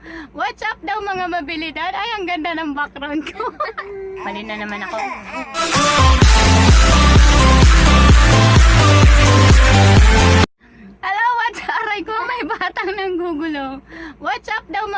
What's up daw mga Mabelidad? Ay, ang ganda ng background ko. Mali na naman ako. Hello, what's up? Aray ko, may batang nanggugulo. What's up daw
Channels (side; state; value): both; identical; correlation 1.00